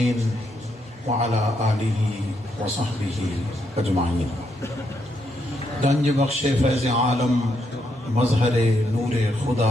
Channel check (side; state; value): both; normal; correlation 0.78